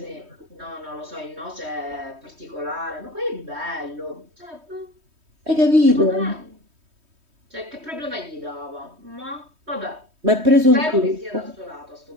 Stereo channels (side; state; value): left; late; 3.2 ms